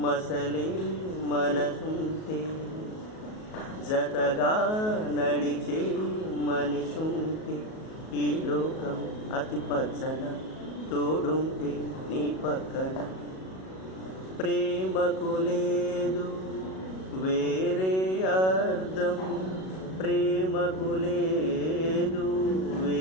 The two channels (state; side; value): late; right; 37 ms